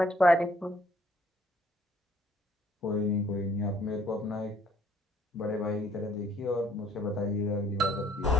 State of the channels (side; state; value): both; normal; correlation 0.60